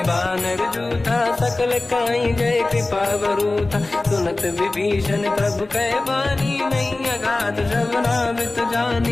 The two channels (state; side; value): quieter; right; 3.1 dB